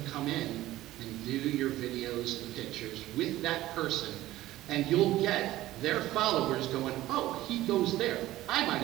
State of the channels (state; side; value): quieter; left; 15.7 dB